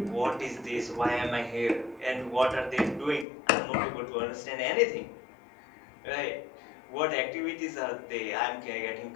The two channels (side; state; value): right; drops out; at 3.2 s